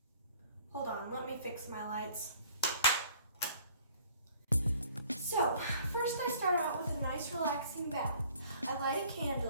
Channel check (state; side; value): inverted; both; correlation -0.55